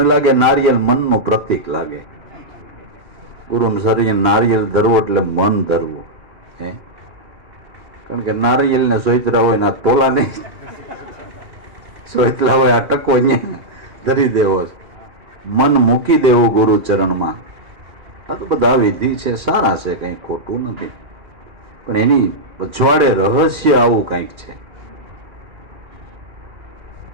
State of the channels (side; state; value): left; late; 2.4 ms